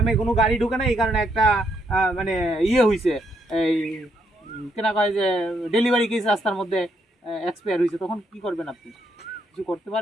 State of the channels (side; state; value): both; normal; correlation 0.75